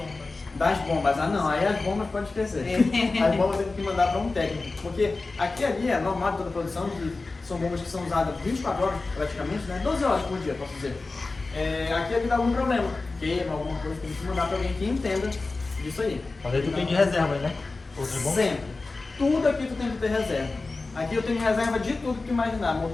Das bombas. Ah não, aí as bombas pode esquecer. As bombas tem que mandar para um técnico. Porque aqui ali é normal de toda a produção, são bombas que são usadas 24 horas praticamente, né? 12 horas por dia, posso dizer. Aqui ali dá algum problema, queima, alguma coisa, tem que mandar para alguém que entenda disso aí. Mas aí tu tem de reserva, né? Outras bombas? Sempre. Tudo aqui tu tem que ter reserva. Aqui eu tenho reserva de tudo que tu imaginar.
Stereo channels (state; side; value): quieter; right; 3.6 dB